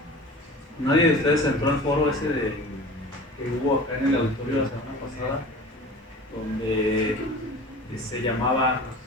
Nadie de ustedes entró al foro ese que hubo acá en el auditorio la semana pasada, donde se llamaba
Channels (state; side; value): normal; both; correlation 0.39